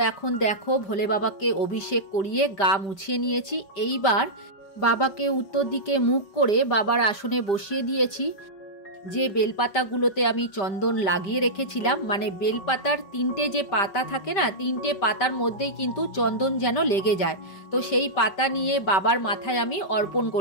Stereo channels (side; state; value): right; late; 5.1 ms